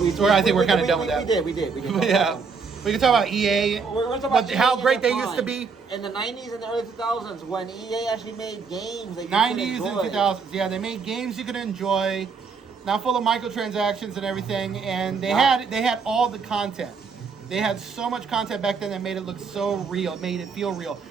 I think we're kind of done with that. We did. Yeah. We can talk about EA, we're talking about how EA great they prime. used to be. In the 90s and the early 2000s, when EA actually made games that you 90s could and enjoy. 2000s, yeah, they made games you could enjoy, not full of microtransactions and everything, and they had all the content. They had so much content back then that made it look so real, made it feel real.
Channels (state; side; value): quieter; left; 5.2 dB